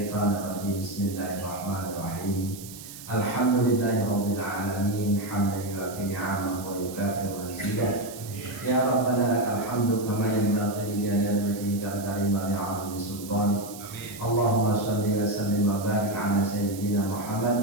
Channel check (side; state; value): right; noise; hiss, 14 dB below the sound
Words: rajim. Bismillahirrahmanirrahim. Alhamdulillahirabbil alamin hamdan yu'affi ni'amahu wa yukafi mazidah. Ya Rabbana lakal hamdu kama yanbaghi li jalali wajhikal karim wa li'azimi sultanik. Allahumma shalli wa sallim wa barik ala sayyidina